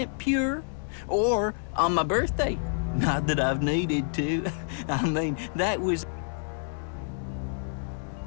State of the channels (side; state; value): right; silent; 59 dB below the other